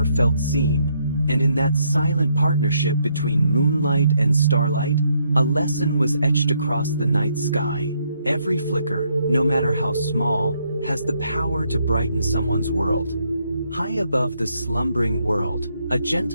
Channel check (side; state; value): both; inverted; correlation -0.74